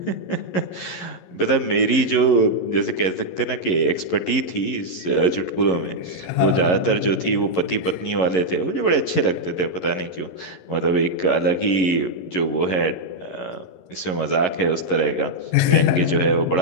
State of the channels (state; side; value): late; right; 11 ms